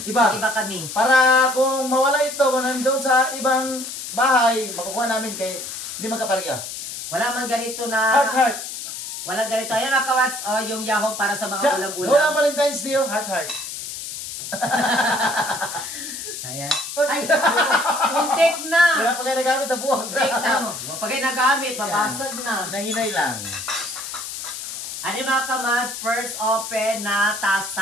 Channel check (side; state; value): left; noise; hiss, 8 dB below the sound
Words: iba kami. Para kung mawala ito, kung nandun sa ibang bahay, makukuha namin kay hindi magkapareha. Wala man ganito na... Heart. Walang ganito. Ayan mga kawats, yung yahong para sa mga ulam-ulam. Wala Valentine's Day, heart. Ayan. Ay, muntik na. Wala pa kayo nagamit na buwag. Muntik na. Pag kayo nagamit, mabasag na. Nahinay lang. Ano mga kamats, first open na